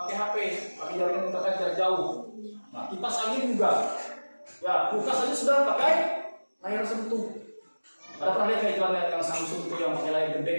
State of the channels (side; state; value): both; inverted; correlation -1.00